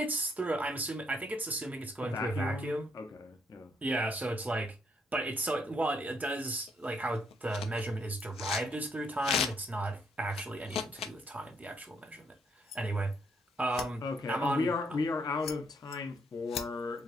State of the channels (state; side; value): normal; both; correlation 0.72